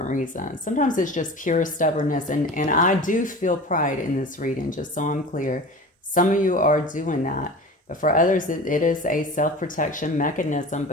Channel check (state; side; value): normal; both; correlation 0.36